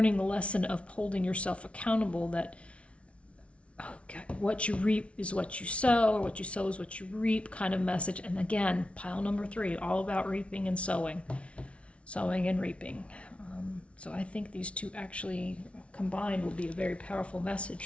the lesson of holding yourself accountable, that okay, what you reap is what you sow, or what you sow is what you reap kind of message. And again, pile number 3, all about reaping and sowing and reaping. So I think these two actually combined will be a very powerful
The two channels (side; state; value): right; late; 0.061 ms